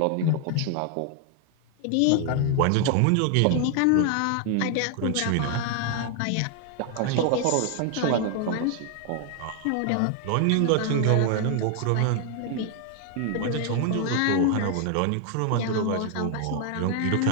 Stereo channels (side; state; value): both; different; correlation 0.00